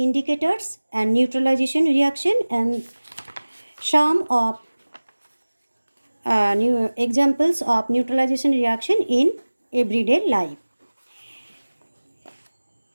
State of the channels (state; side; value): inverted; both; correlation -1.00